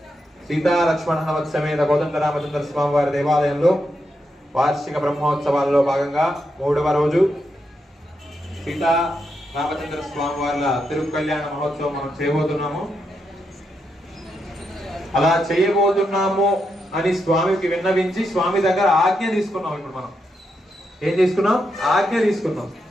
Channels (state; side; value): normal; both; correlation 0.83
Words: సీతా లక్ష్మణ హనుమత్ సమేత కోదండరామచంద్ర స్వామి వారి దేవాలయంలో వార్షిక బ్రహ్మోత్సవాల్లో భాగంగా 3వ రోజు సీతా రామచంద్ర స్వామి వారి తిరుకల్యాణ మహోత్సవం మనం చేయబోతున్నాము. అలా చేయబోతున్నాము అని స్వామికి విన్నవించి స్వామి దగ్గర ఆజ్ఞ తీసుకున్నాం. ఇప్పుడు మనం ఏం తీసుకున్నాం? ఆజ్ఞ తీసుకున్నాం.